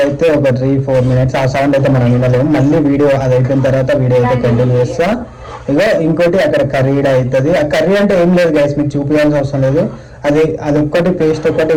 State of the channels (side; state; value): both; identical; correlation 1.00